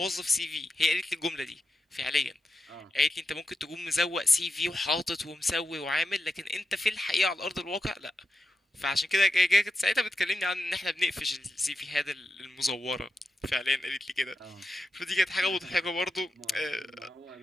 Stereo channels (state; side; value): normal; both; correlation 0.88